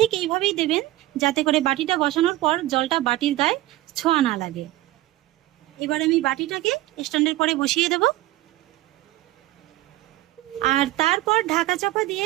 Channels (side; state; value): left; quieter; 16.7 dB